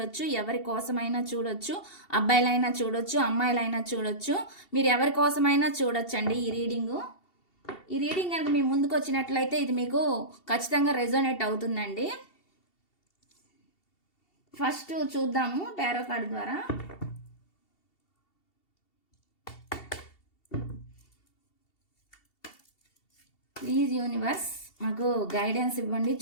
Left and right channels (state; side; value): late; right; 2.7 ms